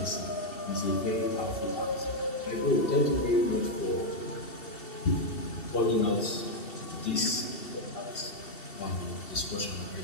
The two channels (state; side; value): late; right; 2.7 ms